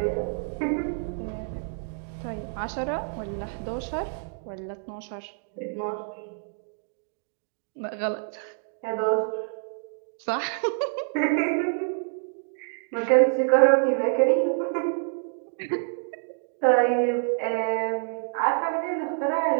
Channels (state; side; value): silent; left; digital silence